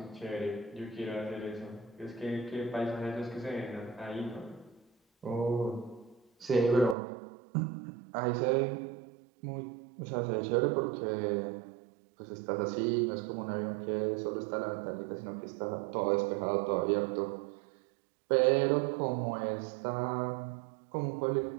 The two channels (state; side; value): drops out; left; at 7.0 s